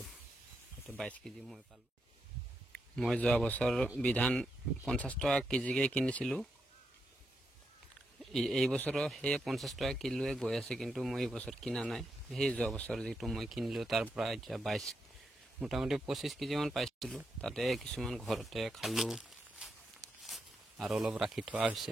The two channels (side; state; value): both; normal; correlation 0.83